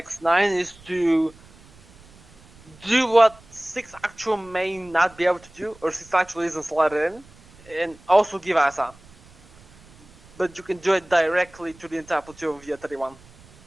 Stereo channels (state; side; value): noise; right; rumble, 25 dB below the sound